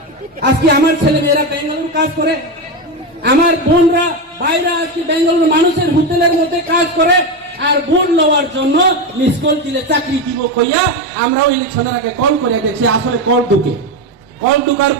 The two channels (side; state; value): both; normal; correlation 0.13